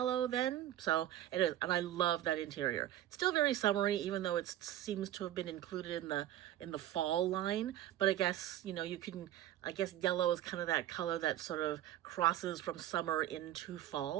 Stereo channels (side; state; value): left; quieter; 12.6 dB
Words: then. So it is, and I love that interior. It's still very summery, even though it seems to have been included in the fall line. But I guess, you know, you can, I guess yellow is kind of that color that sort of crosses from summer into